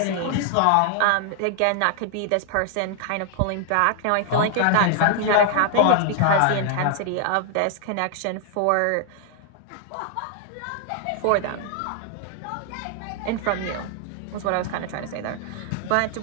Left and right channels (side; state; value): both; different; correlation 0.00